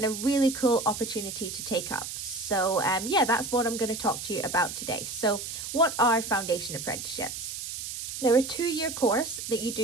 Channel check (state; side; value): noise; right; hiss, 7 dB below the sound